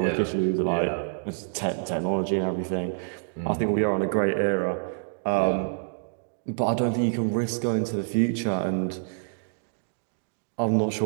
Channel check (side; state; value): left; silent; digital silence